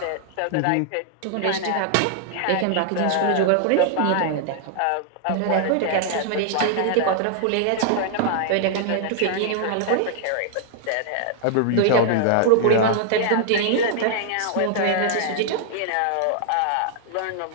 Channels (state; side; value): different; both; correlation -0.01